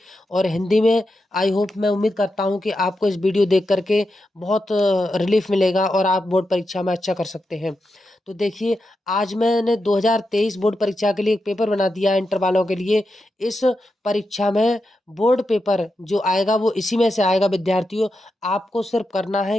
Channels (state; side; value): normal; both; correlation 0.88